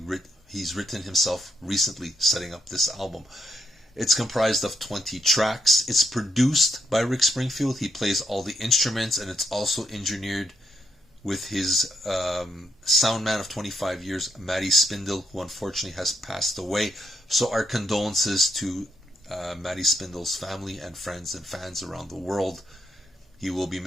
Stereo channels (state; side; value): normal; both; correlation 0.78